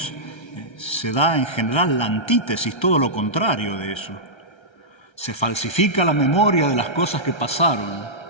se da en general la antítesis, todo lo contrario de eso. Se falsifica la memoria de las cosas que pasaron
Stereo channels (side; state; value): right; late; 1.3 ms